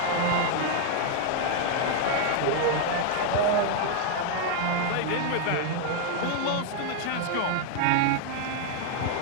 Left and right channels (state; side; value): different; both; correlation 0.00